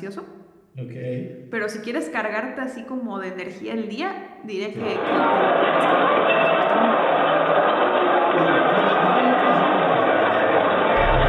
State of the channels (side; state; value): both; identical; correlation 1.00